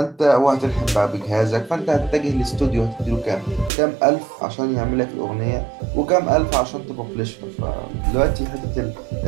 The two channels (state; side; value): drops out; left; at 3.7 s